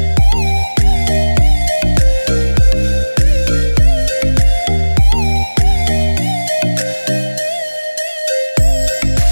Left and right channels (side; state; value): both; inverted; correlation -1.00